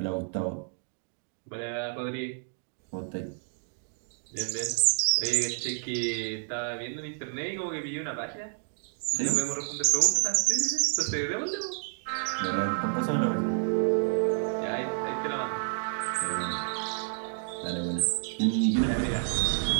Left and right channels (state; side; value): silent; left; digital silence